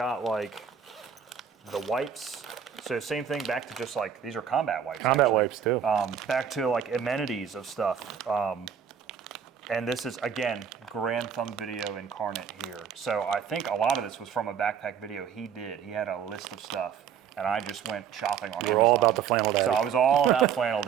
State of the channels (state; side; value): quieter; left; 7.8 dB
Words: like the wipes. So same thing, back to just like, these are combat wipes. Combat wipes too. Back to like amenities of stuff. And this is, again, Grand Thumb Video incarnate here. So I think a lot of this was from a backpack video he did. He had a list of stuff, and I just went shopping on Amazon. We're all about the flannel daddy. So I was all about flannel